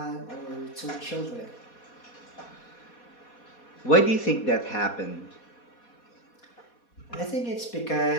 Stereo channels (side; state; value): right; late; 4.2 ms